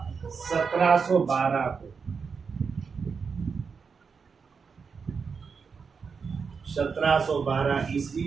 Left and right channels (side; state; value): left; quieter; 5.6 dB